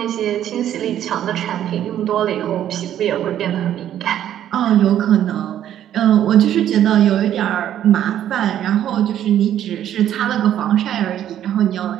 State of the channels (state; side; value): quieter; left; 11.0 dB